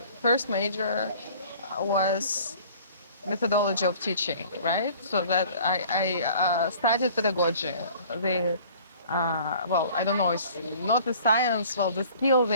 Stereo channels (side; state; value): both; inverted; correlation -0.50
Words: first major was methodology of teaching, right? So that I studied pedagogy. Well, I don't know, it's not the science, well, the skill,